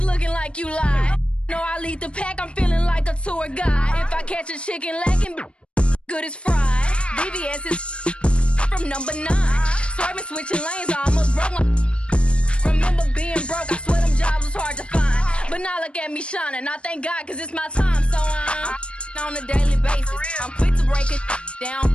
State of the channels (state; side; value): late; right; 0.058 ms